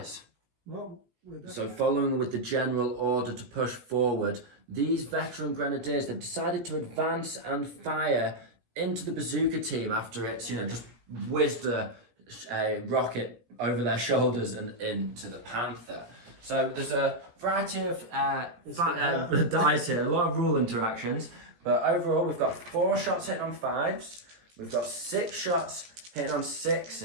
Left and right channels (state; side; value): late; left; 17 ms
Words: So following with the general order to push forward, these veteran grenadiers, they've decided to advance and fire into the bazooka team after it's, just whizzed a rocket over their shoulders and into the Panther. So there's a variety of dice here, a lot of rule interactions, but overall we've got 4 shots hitting on 5s, we've got 6 shots hitting on